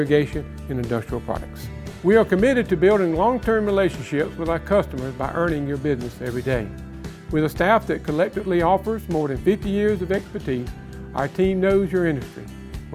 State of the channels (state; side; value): identical; both; correlation 1.00